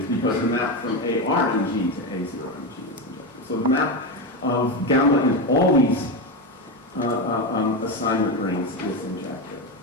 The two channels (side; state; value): both; normal; correlation 0.13